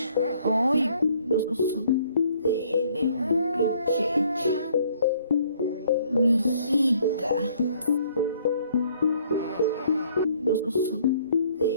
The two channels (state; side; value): inverted; both; correlation -0.62